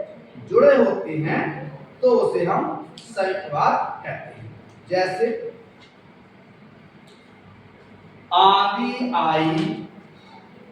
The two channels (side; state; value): both; identical; correlation 1.00